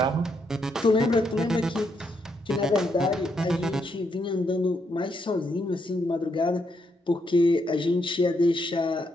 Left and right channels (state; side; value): normal; both; correlation 0.77